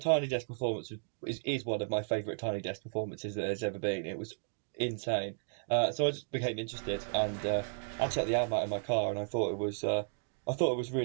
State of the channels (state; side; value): silent; left; digital silence